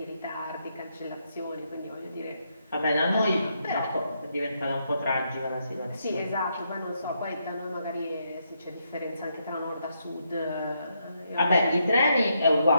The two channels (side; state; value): both; inverted; correlation -0.78